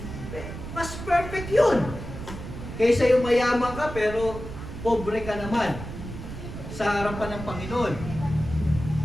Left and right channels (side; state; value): right; noise; rumble, 9 dB below the sound